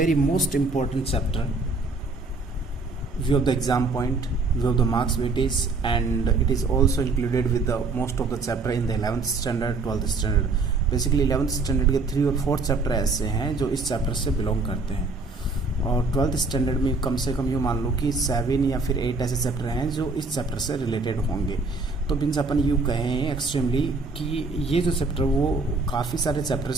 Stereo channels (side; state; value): left; quieter; 3.8 dB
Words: most important chapter. View of the exam point, view of the marks weightage, and it is also included with the most of the chapter in the 11th standard 12th standard. Basically 11th standard के 3 और 4 chapter ऐसे हैं जो इस chapter से belong करते हैं, और 12th स्टैंडर्ड में कम से कम यूँ मान लो कि 7 या फिर 8 ऐसे चैप्टर हैं जो इस चैप्टर से रिलेटेड होंगे। तो मीन्स अपन यूँ कहें एक्सट्रीमली कि ये जो चैप्टर वो काफ़ी सारे